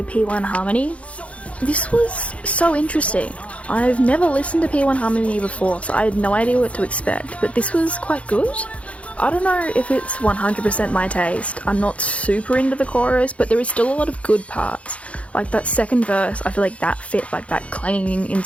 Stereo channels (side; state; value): right; late; 0.063 ms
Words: P1 Harmony. This was so interesting. I've never listened to P1 Harmony before, so I had no idea what to expect, but this was quite good. I don't know if it's 100% my taste. I'm not super into the chorus, but there is still a lot of good parts. Like that second verse, I feel like that fit like that clanging